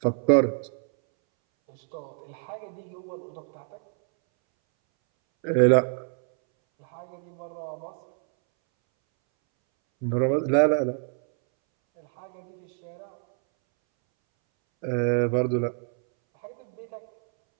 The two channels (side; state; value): left; silent; 60 dB below the other